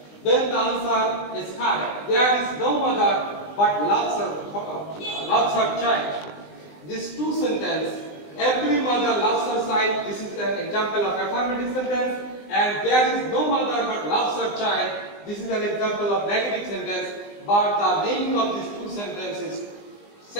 Then the answer is correct. There is no mother but loves her child. These two sentences, every mother loves her child, this is an example of affirmative sentence, and there is no mother but loves her child, this is an example of negative sentence, but the meaning of these two sentences is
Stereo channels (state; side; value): late; right; 20 ms